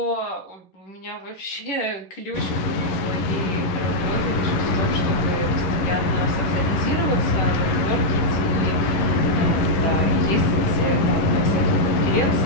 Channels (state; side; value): late; right; 11 ms